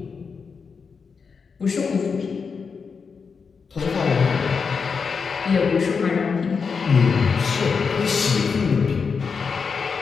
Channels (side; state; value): right; quieter; 5.5 dB